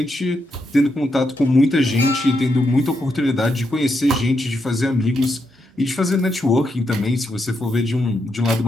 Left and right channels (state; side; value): normal; both; correlation 0.82